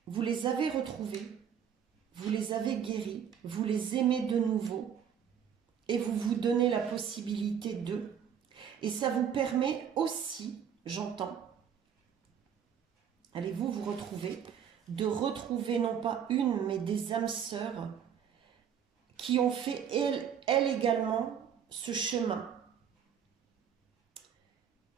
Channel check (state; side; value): quieter; left; 8.2 dB